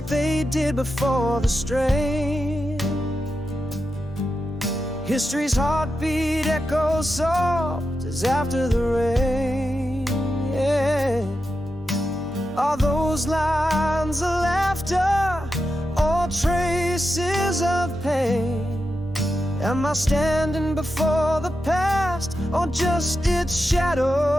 they did before the strain. History's heartbeat echoes soft as after the rain. Yeah. Are those lines of laughter or traces of pain? Am I standing before the past, or just its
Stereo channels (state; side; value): normal; both; correlation 0.89